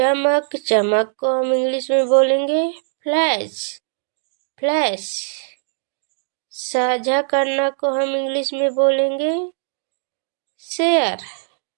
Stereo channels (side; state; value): left; silent; digital silence